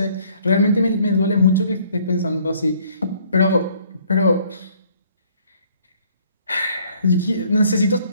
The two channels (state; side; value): inverted; both; correlation -0.61